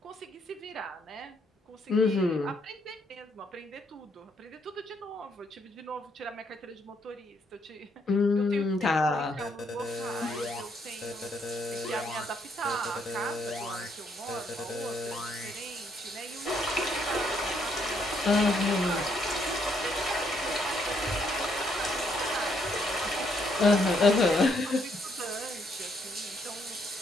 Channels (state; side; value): normal; both; correlation 0.72